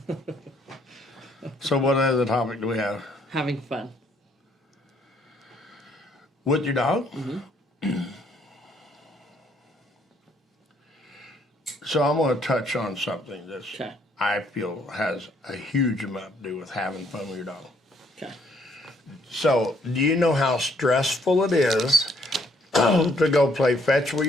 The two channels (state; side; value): normal; both; correlation 0.67